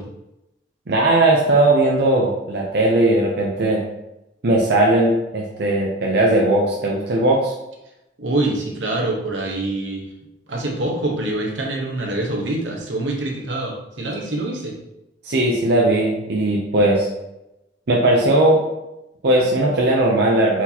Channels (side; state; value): both; normal; correlation 0.20